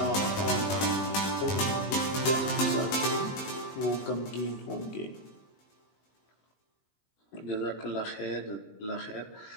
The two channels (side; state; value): right; late; 20 ms